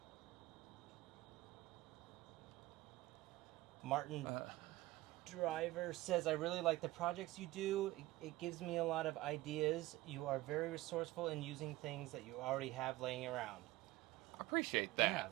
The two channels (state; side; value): quieter; left; 18.2 dB